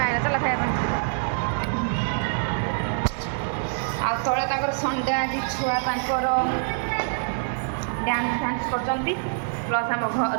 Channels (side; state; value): left; silent; 62 dB below the other